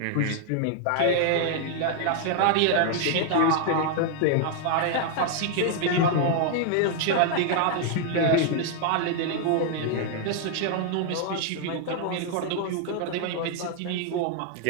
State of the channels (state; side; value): different; both; correlation 0.00